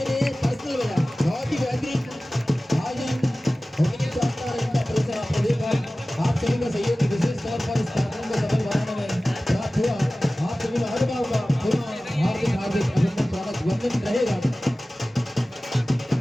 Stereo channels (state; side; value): normal; both; correlation 0.97